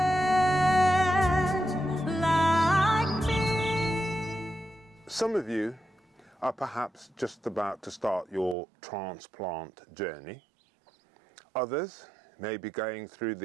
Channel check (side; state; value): left; drops out; at 8.6 s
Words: Some of you are perhaps just about to start your transplant journey. Others may be going through